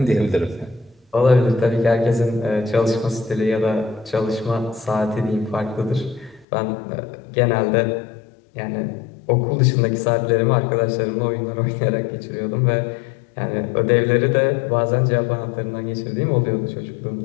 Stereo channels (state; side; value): drops out; right; at 6.5 s